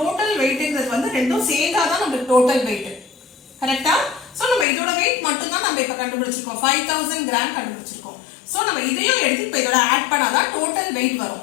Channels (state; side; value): drops out; right; at 4.7 s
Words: weightங்கிறது வந்து ரெண்டும் சேர்ந்தா தான் நமக்கு total weight. கரெக்ட்டா? சோ நம்ம இதோட weight மட்டும் தான் நம்ம இப்ப கண்டுபிடிச்சிருக்கோம். 5000 gram கண்டுபிடிச்சிருக்கோம். சோ நம்ம இதையும் எடுத்து இப்ப இதோட ஆட் பண்ணாதான் total weight